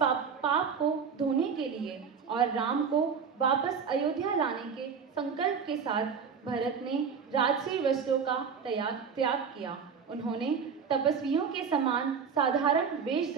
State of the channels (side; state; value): left; quieter; 6.3 dB